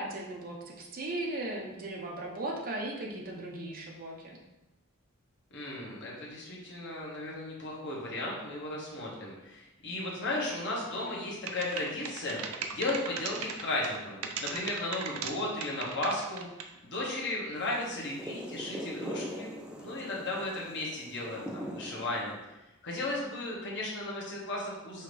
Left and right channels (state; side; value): normal; both; correlation 0.14